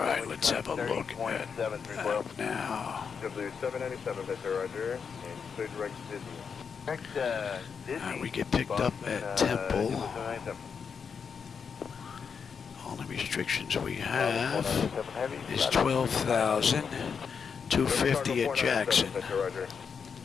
let's have a look at that now. W797, Mr. Roger, and good direct Disney. We get picked up at Temple. Only restrictions we have is 12,250 at Jackson.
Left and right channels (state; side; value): quieter; right; 6.3 dB